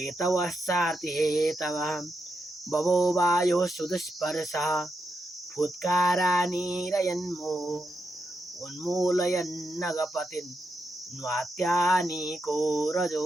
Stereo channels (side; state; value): both; normal; correlation 0.84